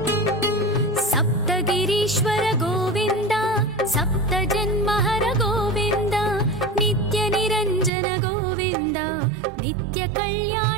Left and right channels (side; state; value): left; drops out; at 7.9 s